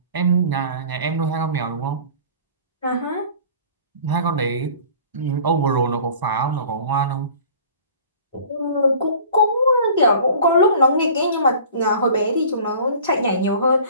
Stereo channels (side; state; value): both; inverted; correlation -0.45